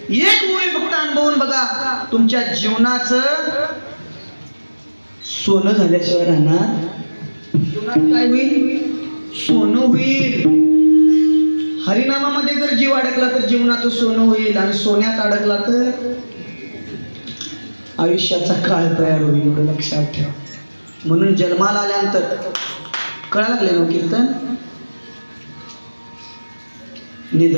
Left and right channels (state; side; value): inverted; both; correlation -1.00